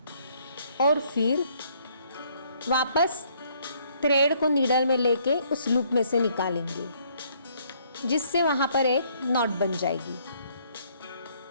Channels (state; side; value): inverted; both; correlation -0.65